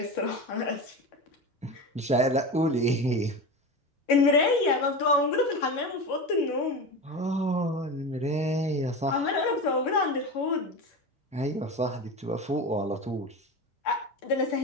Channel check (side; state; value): both; normal; correlation 0.25